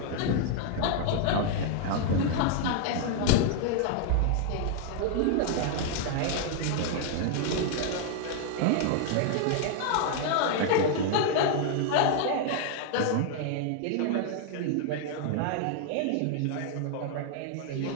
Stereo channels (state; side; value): different; both; correlation 0.00